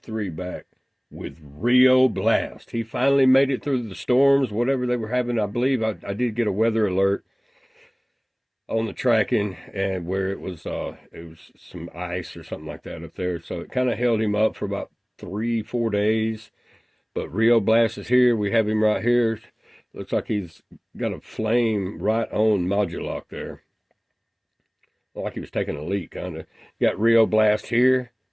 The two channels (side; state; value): both; identical; correlation 1.00